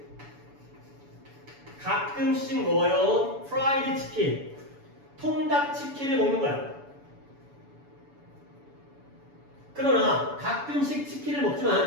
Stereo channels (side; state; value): left; late; 7.0 ms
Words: 가끔씩 먹어요. 프라이드 치킨 통닭 치킨을 먹는 거야. 그러나 가끔씩 치킨을